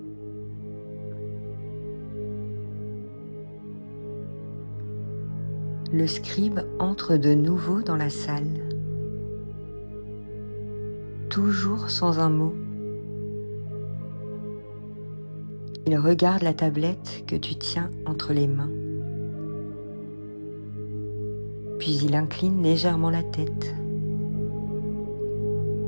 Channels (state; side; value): inverted; both; correlation -1.00